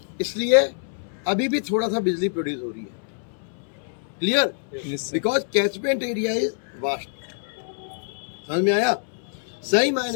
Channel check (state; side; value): silent; right; 62 dB below the other